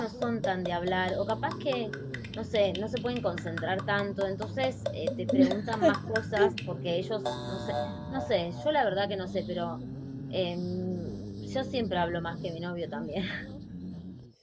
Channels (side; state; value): both; identical; correlation 1.00